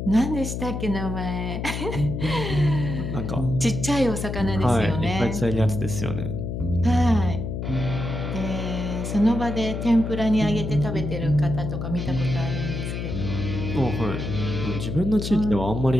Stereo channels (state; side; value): noise; left; hum, 4 dB below the sound